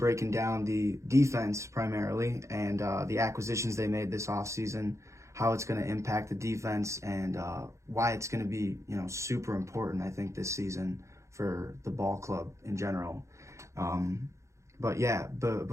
down the defense primarily and the acquisitions they made this offseason, how it's going to impact the defense, and why it's going to be, super important, I think, this season for the ball club in general. But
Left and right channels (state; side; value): late; left; 0.14 ms